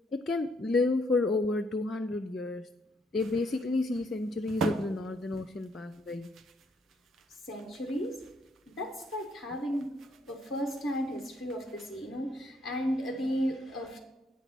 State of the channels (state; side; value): normal; both; correlation 0.71